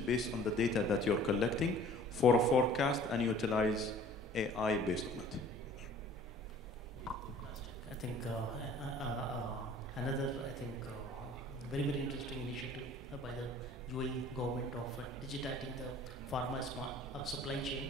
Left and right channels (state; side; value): normal; both; correlation 0.50